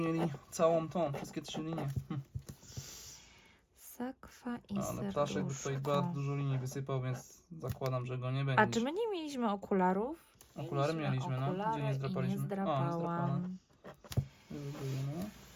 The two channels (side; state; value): both; identical; correlation 1.00